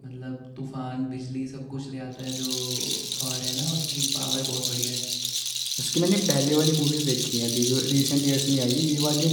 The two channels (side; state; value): both; identical; correlation 1.00